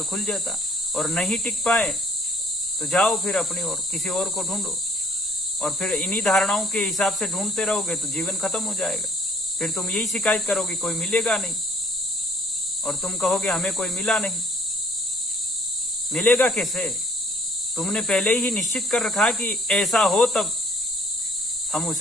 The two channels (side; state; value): both; normal; correlation 0.59